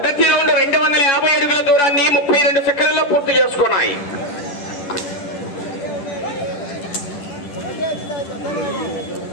రౌండ్ 250 అడుగుల దూరాన్ని 32 సెకండ్లలో పూర్తి చేసుకున్నాయి.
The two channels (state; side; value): late; right; 10 ms